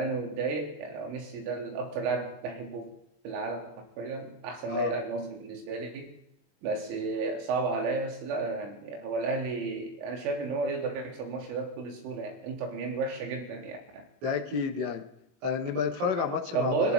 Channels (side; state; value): left; late; 21 ms